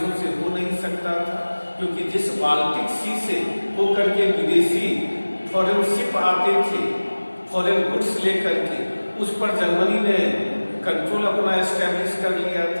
से हो नहीं सकता था, क्योंकि जिस बाल्टिक सी से होकर के विदेशी फॉरेन शिप आते थे फॉरेन गुड्स लेकर के, उस पर जर्मनी ने कंट्रोल अपना एस्टेब्लिश कर लिया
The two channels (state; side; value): inverted; both; correlation -1.00